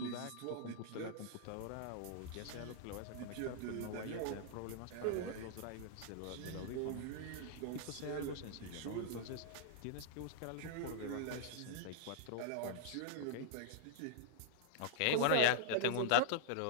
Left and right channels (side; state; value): both; different; correlation -0.02